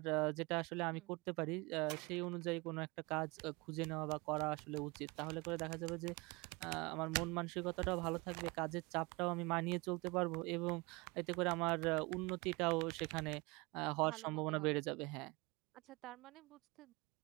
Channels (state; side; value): quieter; left; 25.6 dB